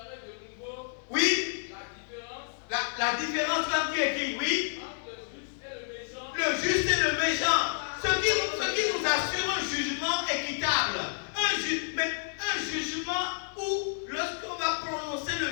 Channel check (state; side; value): silent; right; digital silence